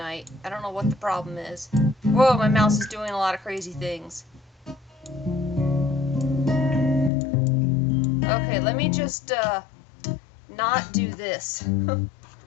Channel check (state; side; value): drops out; right; at 7.1 s